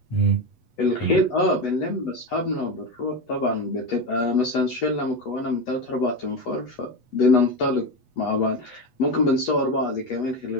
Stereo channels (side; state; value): right; late; 8.0 ms